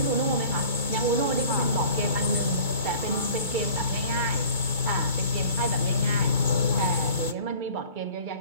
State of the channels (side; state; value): left; late; 2.3 ms